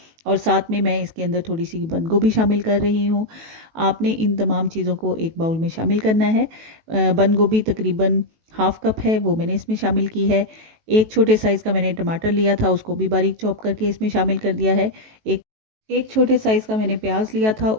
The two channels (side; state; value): left; late; 18 ms